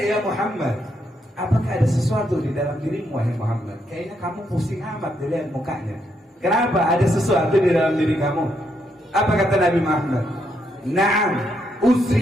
ya Muhammad, apakah ada sesuatu di dalam dirimu wahai Muhammad? Kayaknya kamu pusing amat dilihat mukanya. Kenapa? Ada sesuatu di dalam diri kamu? Apa kata Nabi Muhammad? Naam,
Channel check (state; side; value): normal; both; correlation 0.77